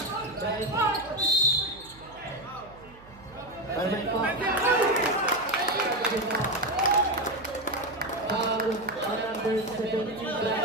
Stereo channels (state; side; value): noise; right; hum, 22 dB below the sound